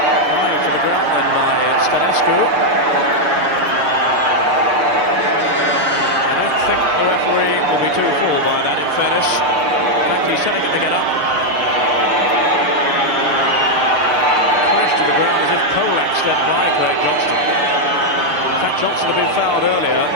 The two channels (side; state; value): left; late; 6.7 ms